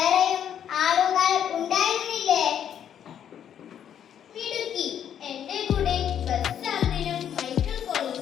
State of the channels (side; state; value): right; quieter; 9.4 dB